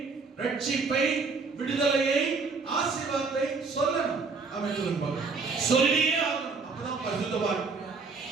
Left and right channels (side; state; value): left; quieter; 4.4 dB